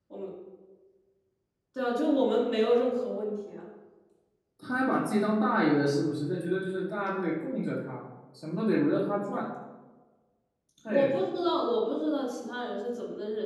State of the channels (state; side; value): identical; both; correlation 1.00